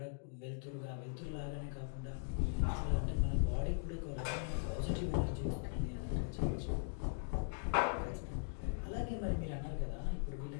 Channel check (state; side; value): silent; right; digital silence